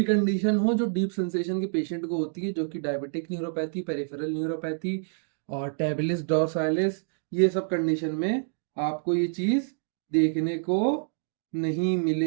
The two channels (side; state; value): left; silent; digital silence